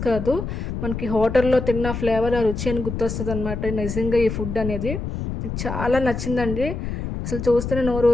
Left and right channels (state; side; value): noise; left; rumble, 5 dB below the sound